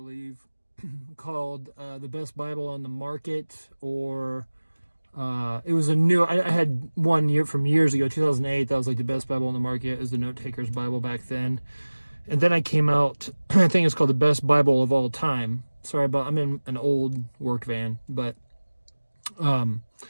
called The Best Bible on the Market, or it was a new, I had one year from years ago, 2008, that was like the best Bible on the market. It was the Note Taker's Bible back then. And then I came out, I think it's called The Best Bible of All Time. Sorry about, I'm in an old work van, but,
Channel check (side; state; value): both; inverted; correlation -1.00